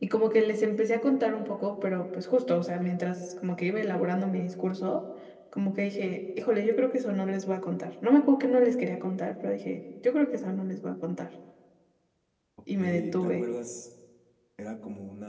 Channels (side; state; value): both; identical; correlation 1.00